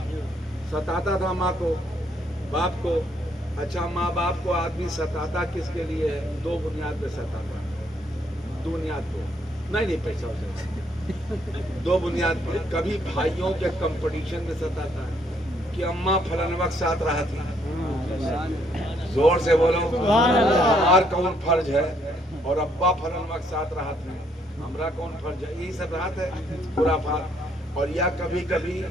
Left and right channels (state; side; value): normal; both; correlation 0.70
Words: ستاتا تھا ماں کو باپ کو. اچھا ماں باپ کو آدمی ستاتا کس کے لیے ہے؟ دو بنیاد پہ ستاتا. بنیاد کو نہیں پیسہ ہو سکتا, دو بنیاد پہ. کبھی بھائیوں کے کمپٹیشن میں ستاتا ہے کہ اماں فلاں وقت ساتھ رہا تھی. زور سے بولو, ہمار کون فرض ہے اور ابا فلاں وقت ساتھ رہا تھا, ہمارا کون فرض ہے؟ یہی سب رات ہے خرافات. اور یا کبھی کبھی